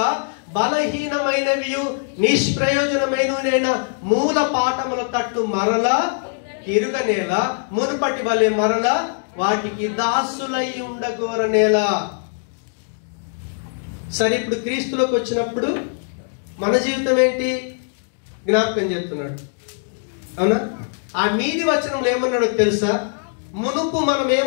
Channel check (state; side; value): silent; right; digital silence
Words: బలహీనమైనవి నిష్ప్రయోజనమైన మూల పాఠముల తట్టు మరలా తిరుగనేల, మునుపటి వలె మరలా వాటికి దాసులై ఉండగోరనేలా. సరే, ఇప్పుడు క్రీస్తులోకి వచ్చినప్పుడు మన జీవితం ఏంటి? జ్ఞాపకం చేస్తున్నాడు. అవునా? ఆ మీది వచనంలో ఏమన్నాడో తెలుసా? మునుపు మనం